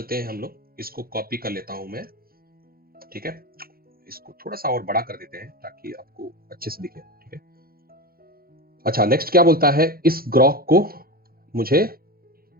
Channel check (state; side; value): late; left; 0.43 ms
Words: हैं हम लोग, इसको कॉपी कर लेता हूँ मैं, ठीक है। इसको थोड़ा सा और बड़ा कर देते हैं ताकि आपको अच्छे से दिखे, ठीक है। अच्छा, नेक्स्ट क्या बोलता है, इस ग्रॉक को मुझे